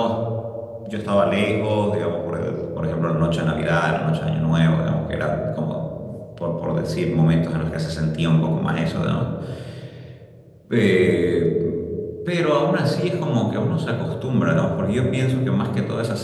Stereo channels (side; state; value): both; identical; correlation 1.00